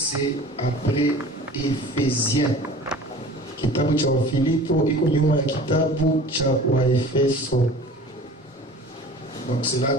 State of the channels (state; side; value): normal; both; correlation 0.42